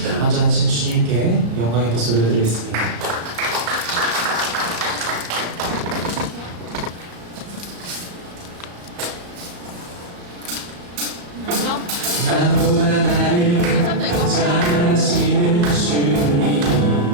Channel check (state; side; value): late; left; 34 ms